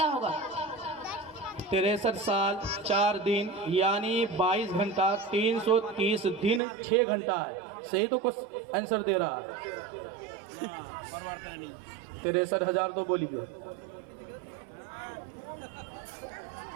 होगा। 63 साल 4 दिन यानी 22 घंटा 330 दिन 6 घंटा है। सही तो कुछ आंसर दे रहा है। 63,000 तो बोलिए।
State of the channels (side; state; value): left; drops out; at 6.6 s